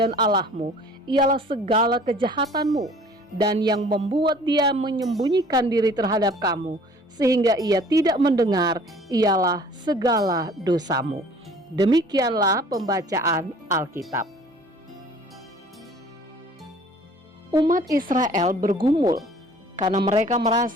Allahmu ialah segala kejahatanmu, dan yang membuat dia menyembunyikan diri terhadap kamu sehingga ia tidak mendengar ialah segala dosamu. Demikianlah pembacaan Alkitab. Umat Israel bergumul karena mereka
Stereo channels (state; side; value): normal; both; correlation 0.51